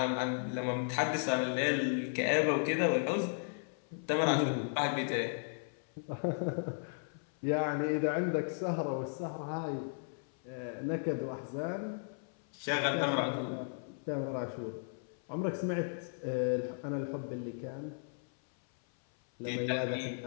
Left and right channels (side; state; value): right; silent; 54 dB below the other